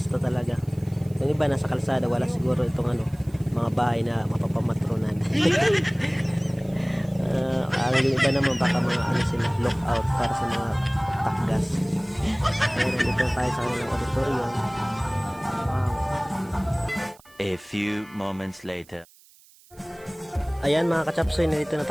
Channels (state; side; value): noise; right; hiss, 27 dB below the sound